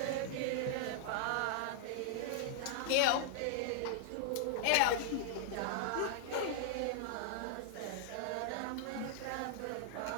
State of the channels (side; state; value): both; different; correlation -0.01